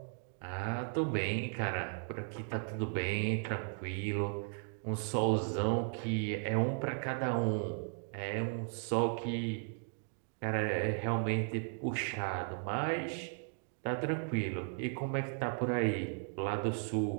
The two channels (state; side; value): silent; left; 54 dB below the other